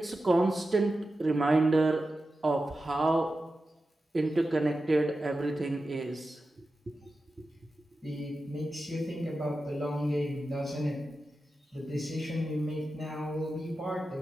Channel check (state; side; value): normal; both; correlation 0.92